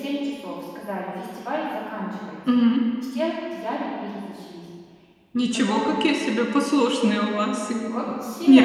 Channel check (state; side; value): identical; both; correlation 1.00